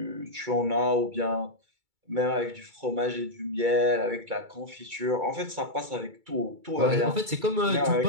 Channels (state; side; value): late; left; 2.3 ms